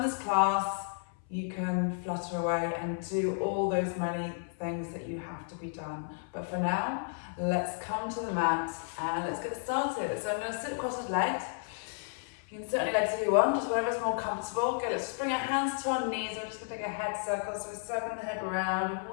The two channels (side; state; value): right; silent; 56 dB below the other